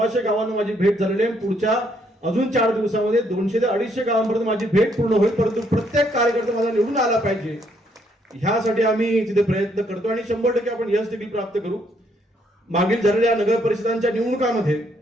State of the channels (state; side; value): normal; both; correlation 0.70